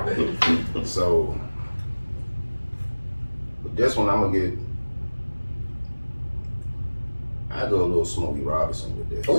So, with this one, I'm gonna get. I go a little Smokey Robinson with this.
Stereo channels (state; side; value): inverted; both; correlation -1.00